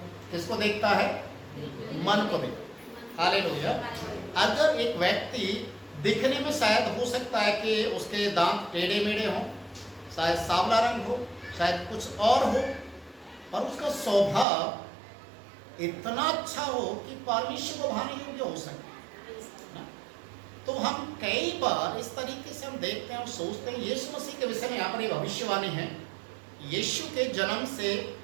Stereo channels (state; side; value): drops out; left; at 14.5 s